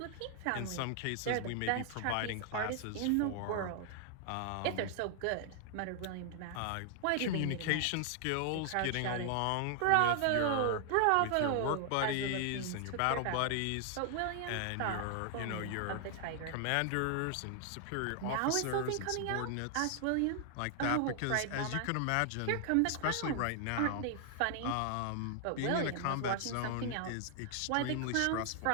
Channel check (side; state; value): both; different; correlation 0.00